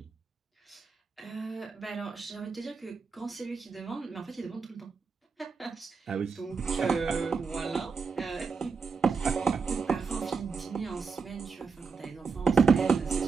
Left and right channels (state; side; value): quieter; left; 5.2 dB